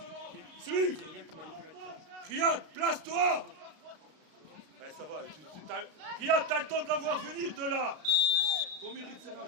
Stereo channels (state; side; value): late; left; 33 ms